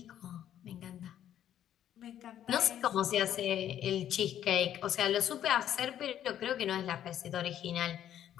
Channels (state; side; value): quieter; right; 10.8 dB